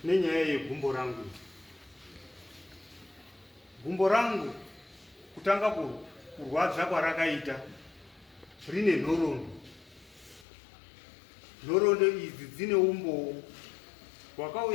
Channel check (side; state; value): right; drops out; at 10.5 s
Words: nenyaya yegumbo rangu. Gumbo rangu kutanga kurwadza kwarakaita rine nhorondo. Nhorondo idzi dzine umbowo